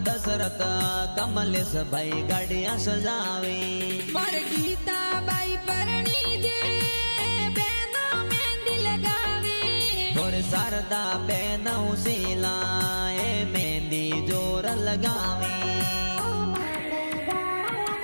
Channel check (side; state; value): both; inverted; correlation -1.00